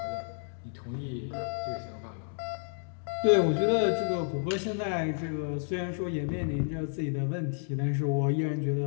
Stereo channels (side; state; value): right; silent; digital silence